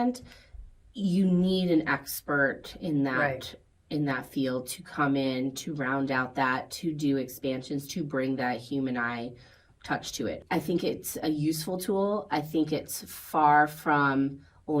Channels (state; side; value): identical; both; correlation 1.00